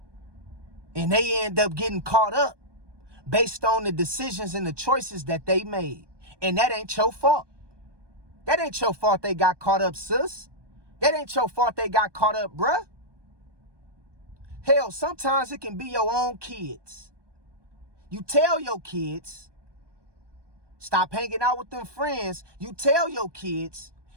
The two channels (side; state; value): left; late; 1.2 ms